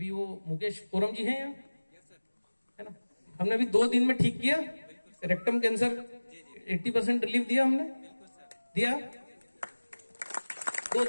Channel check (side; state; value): both; inverted; correlation -1.00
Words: वो मुकेश कोरम जी हैं यहाँ, है ना, हमने अभी 2 दिन में ठीक किया रेक्टम कैंसर, 80% रिलीफ दिया हमने, दिया 2